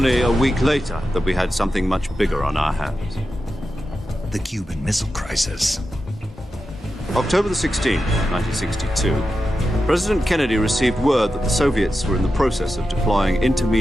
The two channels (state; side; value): normal; both; correlation 0.91